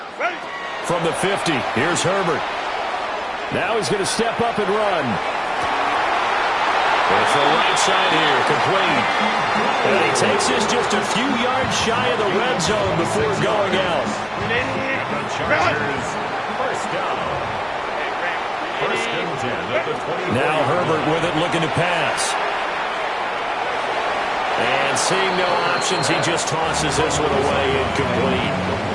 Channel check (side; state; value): both; identical; correlation 1.00